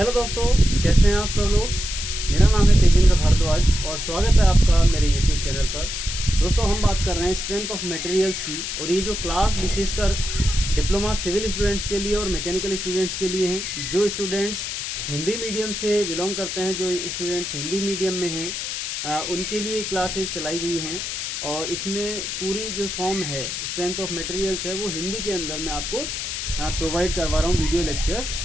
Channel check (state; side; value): noise; left; hiss, 4 dB below the sound